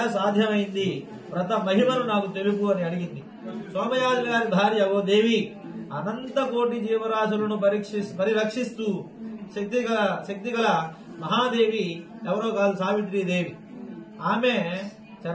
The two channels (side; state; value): both; identical; correlation 1.00